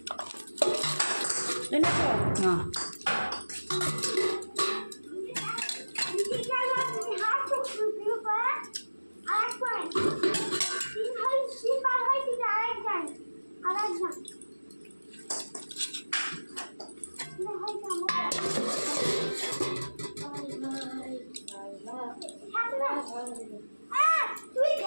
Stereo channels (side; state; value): both; inverted; correlation -1.00